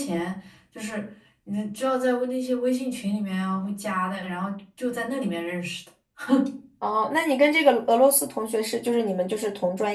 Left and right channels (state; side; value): identical; both; correlation 1.00